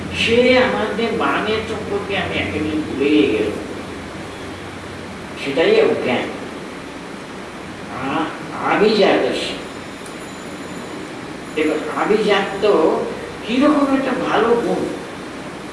সে আমাদের মানের সম্পর্কে আমি একেবারে ভুলে গেল, সেটাই অজ্ঞান। আভিজাত, দেখুন আভিজাত কিরকম একটা ভালো গুণ।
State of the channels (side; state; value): both; identical; correlation 1.00